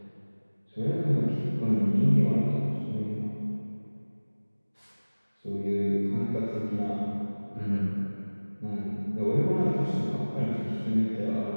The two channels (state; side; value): inverted; both; correlation -1.00